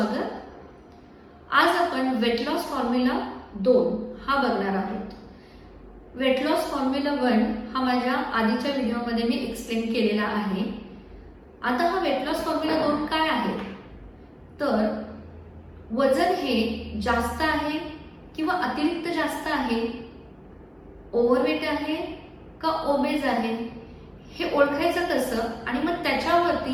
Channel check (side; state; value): both; identical; correlation 1.00